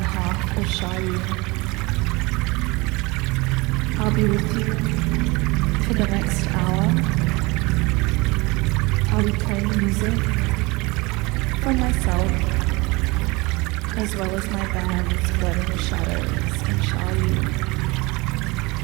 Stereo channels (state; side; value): quieter; left; 24.7 dB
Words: half of Shayu. I'll be with you for the next hour. I'll be playing music from myself as well as my bands Floating the Shadows and Shayu.